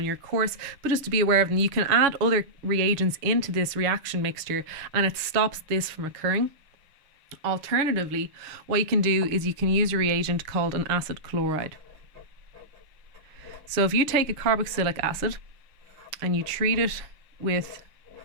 your course, but just to be aware of them. You can add other reagents into this reaction mixture and it stops this from occurring. Alternatively, what you can do is you can use a reagent called an acid chloride. So if you take a carboxylic acid and you treat it with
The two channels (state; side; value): late; left; 6.5 ms